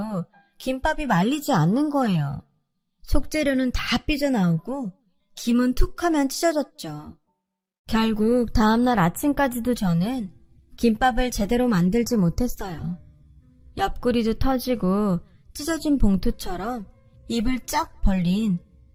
김밥이 말리지 않는 거예요. 속재료는 다 삐져나오고 김은 툭 하면 찢어졌죠. 결국 다음날 아침까지도 저는 김밥을 제대로 만들지 못했어요. 옆구리도 터지고 찢어진 봉투처럼 입을 쫙 벌린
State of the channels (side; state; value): both; identical; correlation 1.00